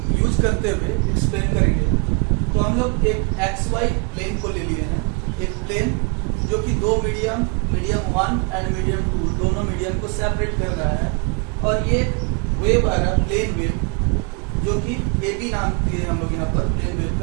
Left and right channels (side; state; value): left; quieter; 33.5 dB